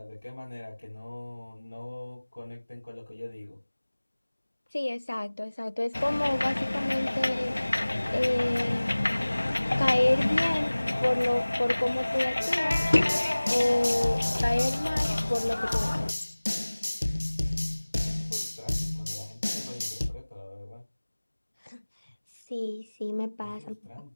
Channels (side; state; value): both; inverted; correlation -1.00